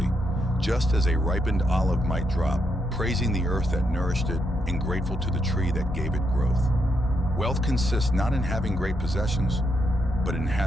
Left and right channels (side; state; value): both; normal; correlation 0.80